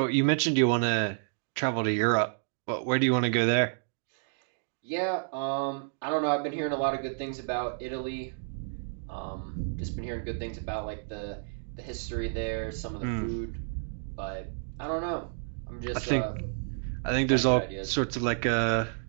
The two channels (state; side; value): silent; left; digital silence